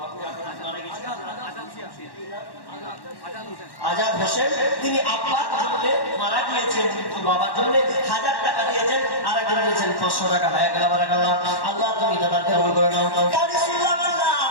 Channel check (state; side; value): late; right; 1.1 ms